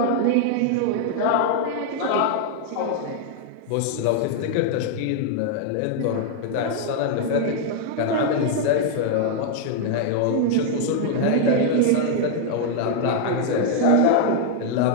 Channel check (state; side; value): different; both; correlation 0.00